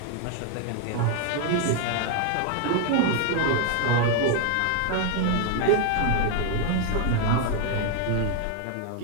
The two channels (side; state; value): both; different; correlation 0.01